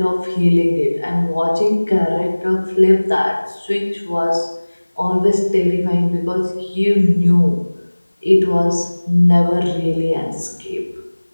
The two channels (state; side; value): inverted; both; correlation -1.00